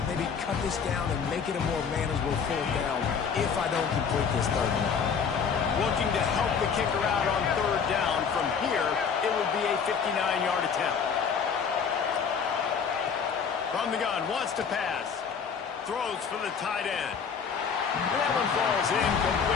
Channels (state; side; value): quieter; right; 6.4 dB